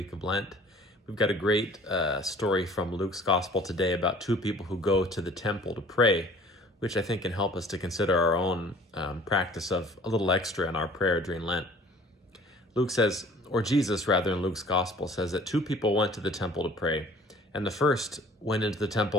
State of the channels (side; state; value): both; normal; correlation 0.50